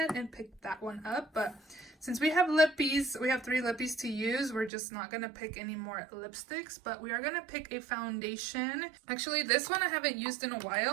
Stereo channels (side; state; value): left; drops out; at 4.7 s